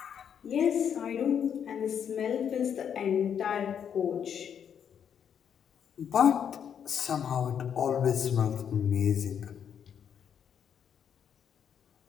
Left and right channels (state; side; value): quieter; right; 8.2 dB